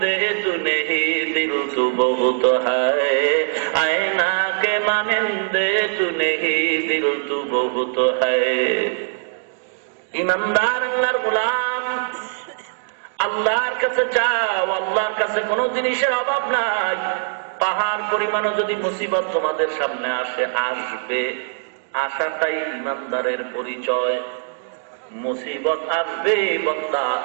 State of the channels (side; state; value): left; silent; digital silence